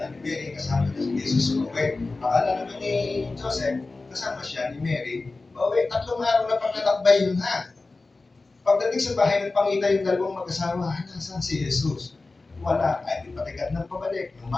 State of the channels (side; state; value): right; quieter; 3.5 dB